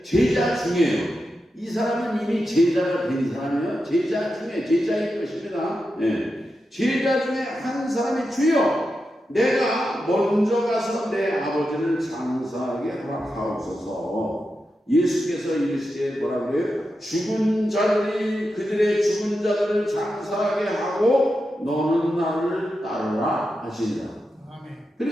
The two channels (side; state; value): both; normal; correlation 0.89